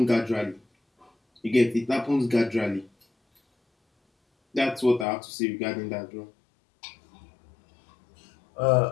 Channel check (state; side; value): drops out; right; at 5.1 s